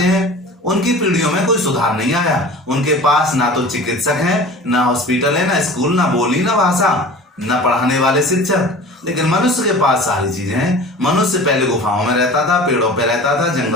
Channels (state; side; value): normal; both; correlation 0.39